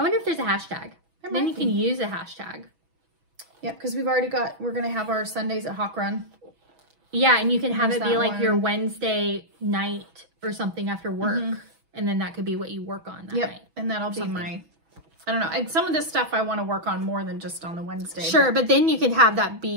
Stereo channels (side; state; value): left; late; 6.1 ms